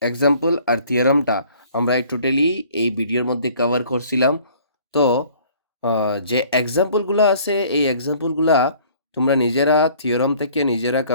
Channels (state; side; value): inverted; both; correlation -0.55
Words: আর থিওরামটা আমরা টোটালি এই ভিডিওর মধ্যে কভার করছিলাম। তো যে এক্সাম্পলগুলো আছে এই এক্সাম্পলগুলা তোমরা নিজেরা থিওরাম থেকে নিজেরা